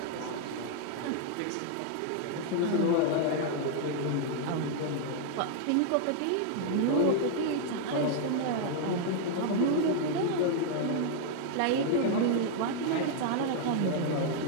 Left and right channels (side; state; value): both; different; correlation 0.00